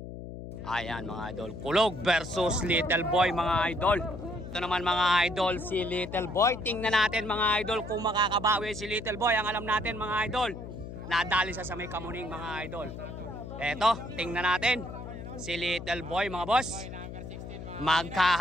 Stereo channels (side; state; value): left; noise; hum, 10 dB below the sound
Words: Ayan mga idol, Kulog versus Little Boy mga idol. Ito naman mga idol, si Little Boy. Tingnan natin mga idol kung makakabawi si Little Boy. Ang alam natin mga idol, nadali sa may Kamuning mga idol. Eto, tingnan natin si Little Boy mga boss.